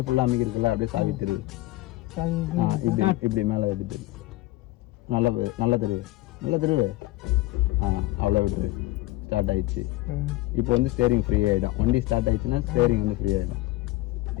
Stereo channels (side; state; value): right; quieter; 18.1 dB